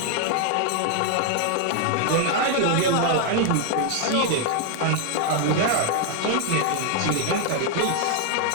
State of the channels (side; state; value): both; different; correlation 0.00